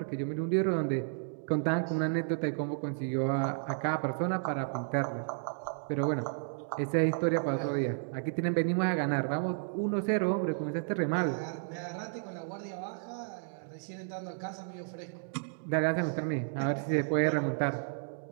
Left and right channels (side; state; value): left; silent; digital silence